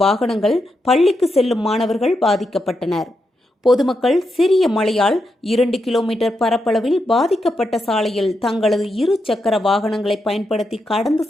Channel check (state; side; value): normal; both; correlation 0.84